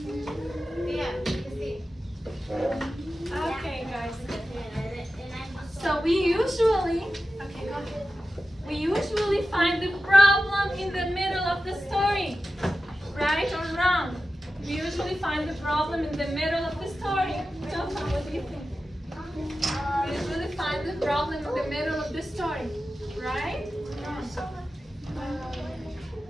Okay, guys. So we usually find the problem in the middle of the story. Right or wrong? We usually find the problem in the middle of the story. Jofa, what do you think? We usually find the problem in the middle of the story. Right?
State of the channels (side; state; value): both; normal; correlation 0.93